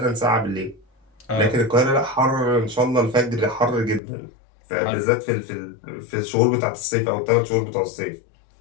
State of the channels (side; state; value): right; drops out; at 4.0 s